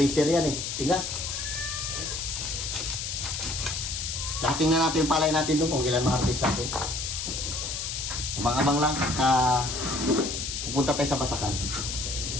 yan eh. Tigas. Dating na natin yung palay natin doon kung ilan ma-harvest natin. Abang-abang lang. Pupunta tayo sa Basakan.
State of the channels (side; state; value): left; noise; hiss, 4 dB below the sound